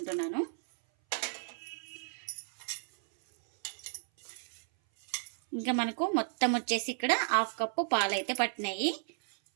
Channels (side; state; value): left; silent; 56 dB below the other